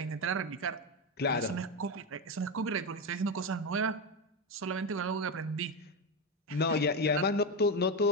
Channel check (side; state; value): both; normal; correlation 0.13